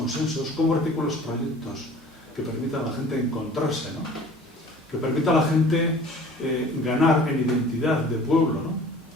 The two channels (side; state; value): both; normal; correlation 0.46